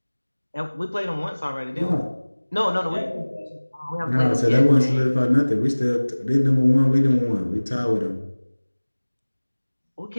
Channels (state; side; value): inverted; both; correlation -1.00